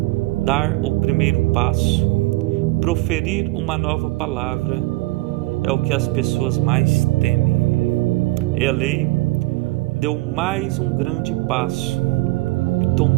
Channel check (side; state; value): left; quieter; 21.0 dB